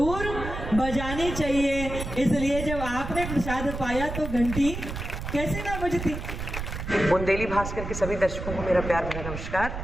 बजानी चाहिए। इसलिए जब आपने प्रसाद पाया तो घंटी कैसे ना बजती। बुंदेली भास्कर के सभी दर्शकों को मेरा प्यार भरा नमस्कार।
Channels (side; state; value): right; noise; rumble, 6 dB below the sound